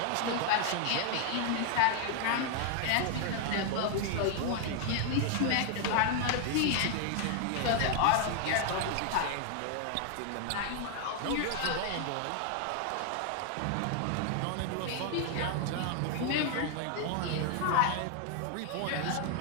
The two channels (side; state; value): both; different; correlation 0.00